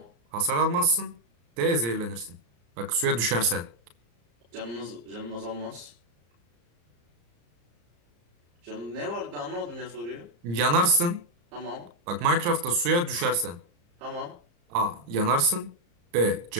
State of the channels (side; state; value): left; late; 34 ms